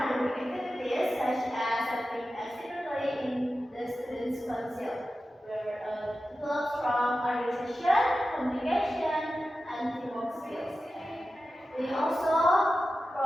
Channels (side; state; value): both; normal; correlation 0.93